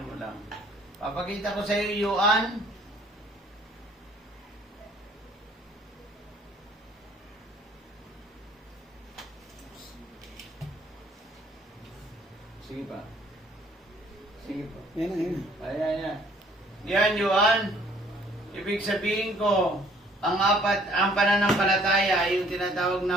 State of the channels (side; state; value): both; normal; correlation 0.59